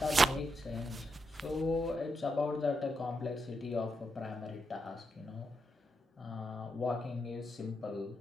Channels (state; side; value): normal; both; correlation 0.83